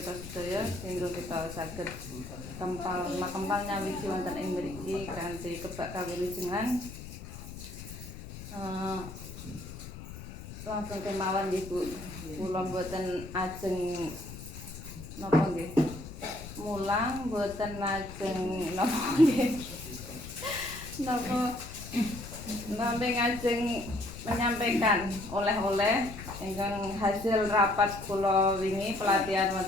sedaya sehingga kita saged kempal nyawiji wonten ing mriki kanthi kebak kawilujengan. Langsung kemawon nggih Bu. Kula mboten ajeng napa nggih. Mulang mboten lajeng napa nggih. Napa nambe ngajeng menyampaikan oleh-oleh ingkang hasil rapat kula wingi pelatihan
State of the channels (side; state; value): left; noise; rumble, 12 dB below the sound